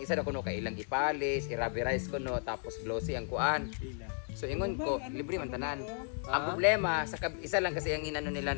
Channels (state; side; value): silent; right; 55 dB below the other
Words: isa na kuno kay ilang ipalis, irabirize kuno tapos glossy ang kuan. So ingon ko, libre man tanan. Ang problema sa isa lang kasi ang inano nila